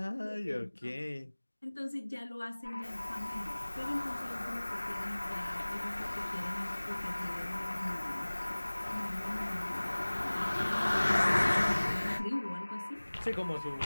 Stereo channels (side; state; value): both; inverted; correlation -1.00